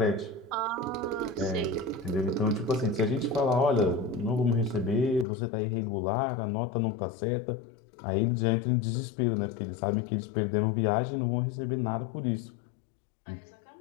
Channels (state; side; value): drops out; right; at 5.2 s